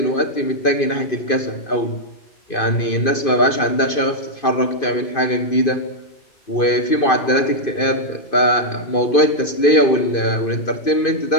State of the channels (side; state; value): right; late; 2.5 ms